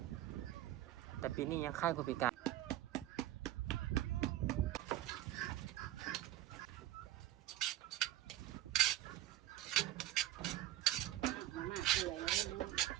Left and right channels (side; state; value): left; quieter; 13.9 dB